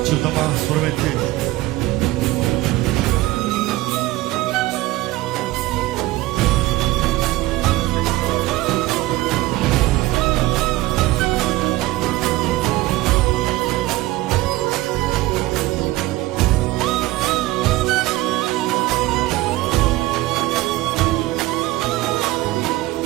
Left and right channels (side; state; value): left; quieter; 18.1 dB